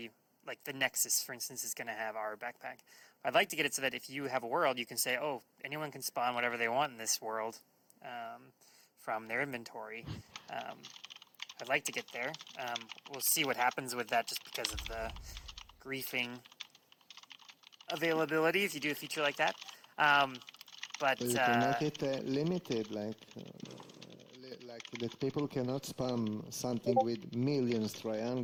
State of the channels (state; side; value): identical; both; correlation 1.00